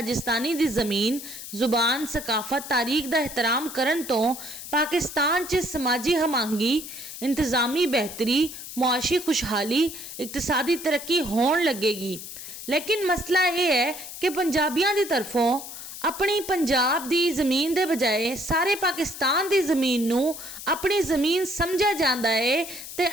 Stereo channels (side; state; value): left; noise; hiss, 11 dB below the sound